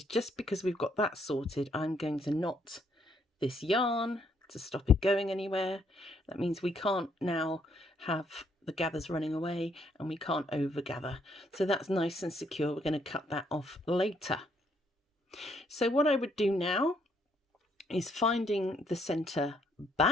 just because we've got that sorted, I'm going to knot this yarn to stop it going anywhere. That means we can't now have the gathers running away and we can't over gather. So that's nice and secure. We're going to cut that off later. So what I would do now is finding the center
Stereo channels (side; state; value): both; normal; correlation 0.70